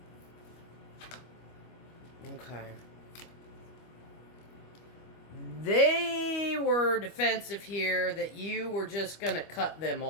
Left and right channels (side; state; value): right; late; 25 ms